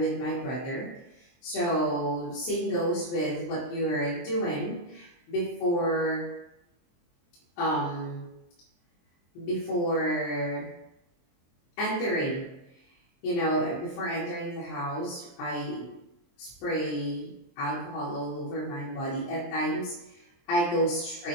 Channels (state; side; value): late; right; 23 ms